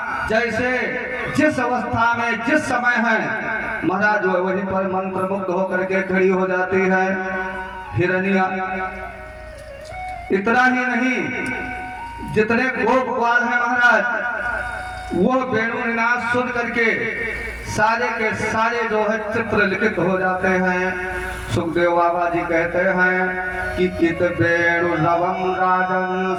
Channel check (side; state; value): both; identical; correlation 1.00